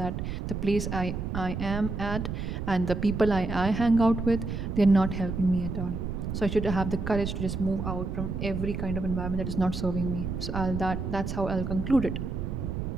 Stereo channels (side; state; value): right; noise; rumble, 4 dB below the sound